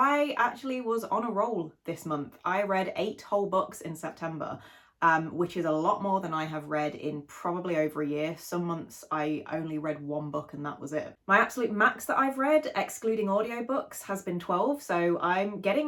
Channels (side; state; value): both; identical; correlation 1.00